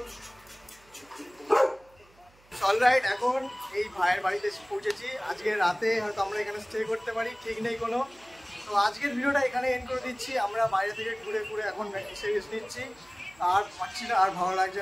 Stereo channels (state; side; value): noise; right; hum, 29 dB below the sound